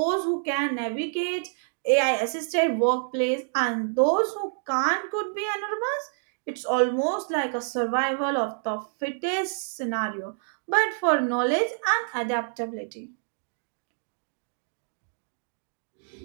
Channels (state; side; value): silent; left; digital silence